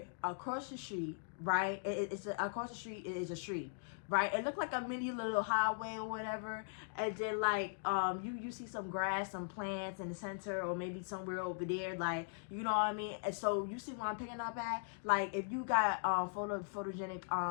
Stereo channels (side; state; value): right; silent; digital silence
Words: across the street, right? Across the street is a street, right? It looked like a mini little highway or whatever. And then like you see some grass, some plants in the center, or maybe somewhere over there, like, you know what I mean? And so you see what I'm picking up at? Like, if you got photogenic